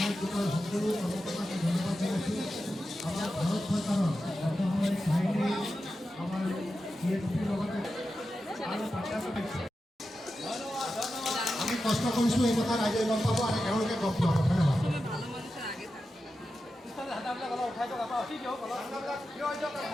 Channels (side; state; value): both; normal; correlation 0.91